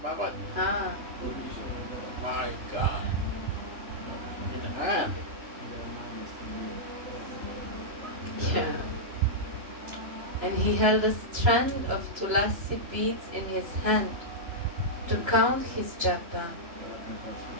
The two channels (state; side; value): late; left; 3.0 ms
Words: Babaji. Ah, My God. In hand. yeah. And he held a strand of tulasi beads in his hand to count his japa,